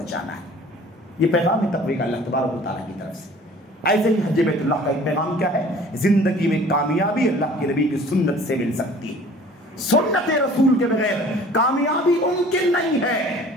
ہے۔ یہ پیغام ہے تقوی کا اللہ تبارک و تعالیٰ کی طرف سے۔ ایسے ہی حج بیت اللہ کا ایک پیغام کیا ہے؟ زندگی میں کامیابی اللہ کے نبی کی سنت سے مل سکتی ہے، سنت رسول کے بغیر کامیابی ممکن نہیں ہے۔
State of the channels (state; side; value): normal; both; correlation 0.49